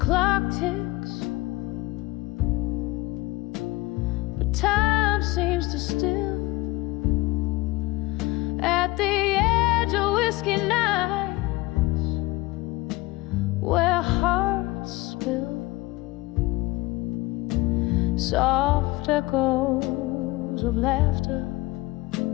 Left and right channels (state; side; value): quieter; right; 20.5 dB